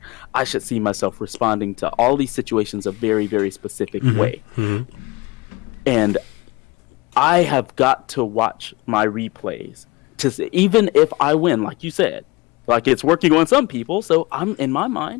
I should see myself responding to all these situations a very, very specific way. And I have got to watch my replays to see, even if I win, like you said, like it's working on some people. So I'm in my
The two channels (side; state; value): right; quieter; 23.5 dB